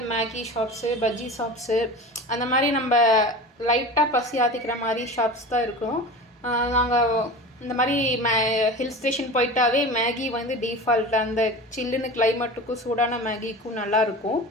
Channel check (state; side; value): normal; both; correlation 0.33